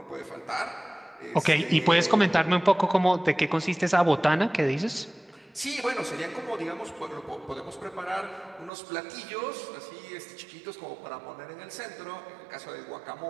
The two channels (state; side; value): drops out; left; at 8.7 s